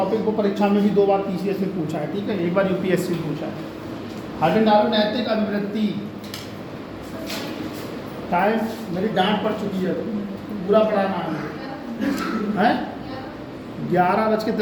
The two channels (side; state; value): both; identical; correlation 1.00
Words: को परीक्षा में भी 2 बार पीसीएस में पूछा है, ठीक है, 1 बार यूपीएससी में पूछा है। हार्डन डालो नैतिक अभिवृत्ति। टाइम मेरी डांट पड़ चुकी है, पूरा पढ़ाना है